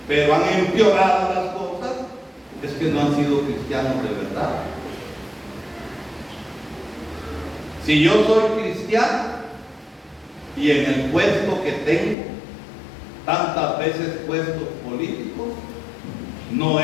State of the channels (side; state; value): right; drops out; at 12.2 s